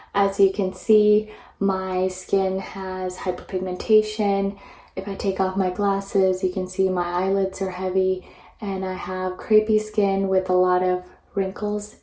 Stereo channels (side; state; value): both; identical; correlation 1.00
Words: As you can see, my skin has hyperpigmentation. If I take off my glasses, you can see my eyelids are heavy, and I have crepey skin with a lot of wrinkles